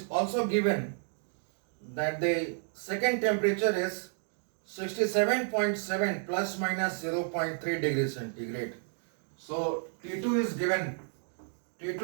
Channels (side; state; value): left; silent; 57 dB below the other